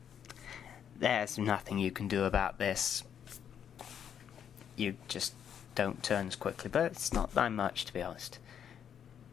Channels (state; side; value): quieter; right; 8.6 dB